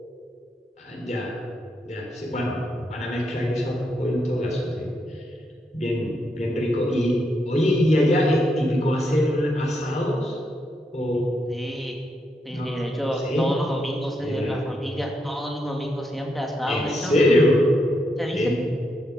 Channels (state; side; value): normal; both; correlation 0.80